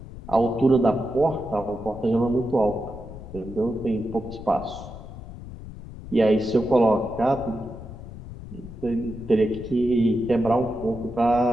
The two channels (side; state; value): left; noise; rumble, 13 dB below the sound